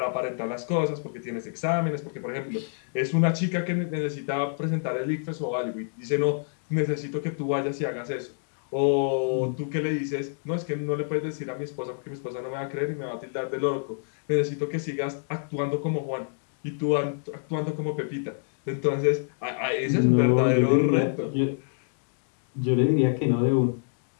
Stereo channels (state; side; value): silent; right; digital silence